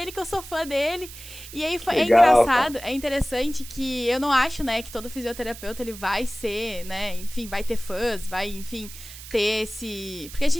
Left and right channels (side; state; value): right; noise; hiss, 15 dB below the sound